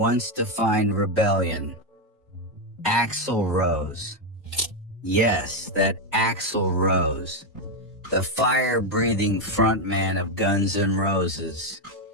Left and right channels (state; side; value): normal; both; correlation 0.05